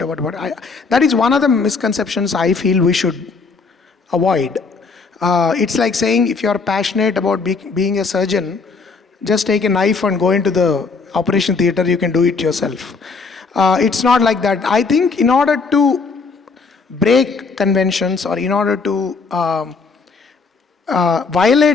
about what. That is one of the misconceptions I feel we should avoid. It's like saying if you are passionate about being a surgeon, just take a knife and go into the operation theater, you can do it yourself. It's not like that. I think in order to break conventions or in order to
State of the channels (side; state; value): right; quieter; 4.5 dB